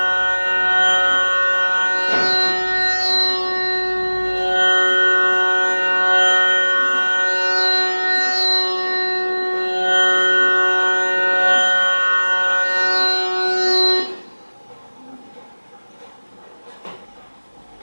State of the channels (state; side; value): inverted; both; correlation -1.00